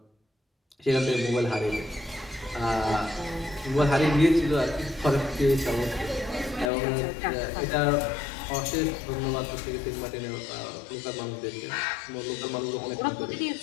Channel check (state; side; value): drops out; right; at 6.7 s